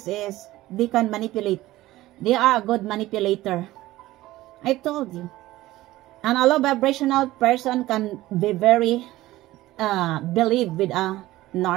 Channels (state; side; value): quieter; left; 16.7 dB